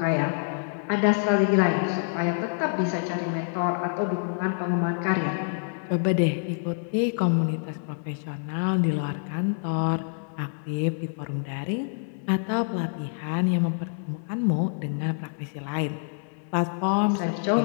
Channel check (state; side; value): silent; right; 60 dB below the other